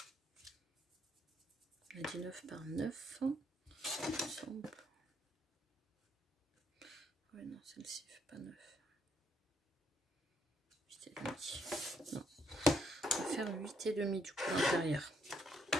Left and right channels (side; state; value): both; normal; correlation 0.72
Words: On a dit 9 par 9. Ouais, non, celle-ci fait pas 9. 8,5. Non. On va faire 8,5 du coup à l'intérieur.